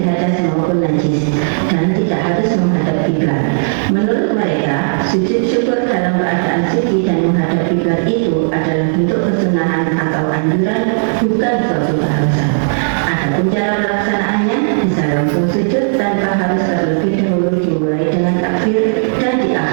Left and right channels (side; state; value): left; silent; digital silence